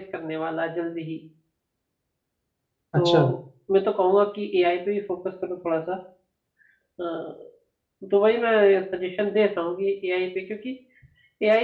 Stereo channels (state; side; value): identical; both; correlation 1.00